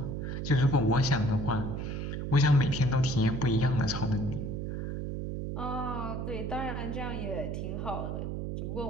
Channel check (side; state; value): right; noise; hum, 3 dB below the sound